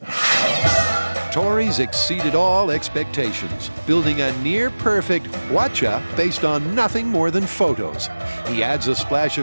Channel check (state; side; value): inverted; both; correlation -1.00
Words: Tori's exceeded all expectations, building a near-perfect Hwacha based on nothing more than photos. He adds a splash